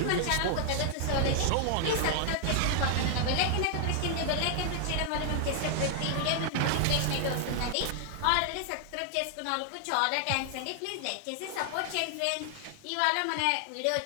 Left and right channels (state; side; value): different; both; correlation 0.00